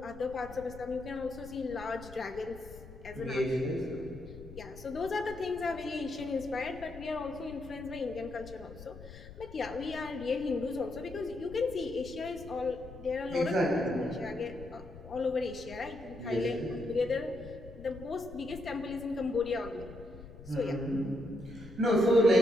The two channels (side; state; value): left; noise; rumble, 15 dB below the sound